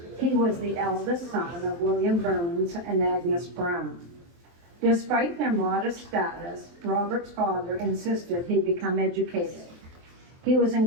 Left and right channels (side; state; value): left; late; 23 ms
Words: He was the eldest son of William Burns and Agnes Brown. Despite their modest status, Robert's father insisted he become educated. He was